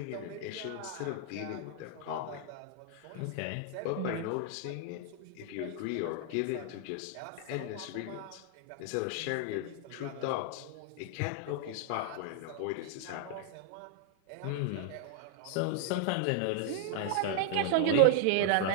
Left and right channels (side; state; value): both; different; correlation 0.00